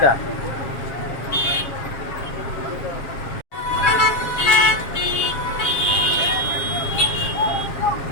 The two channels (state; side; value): late; right; 7.3 ms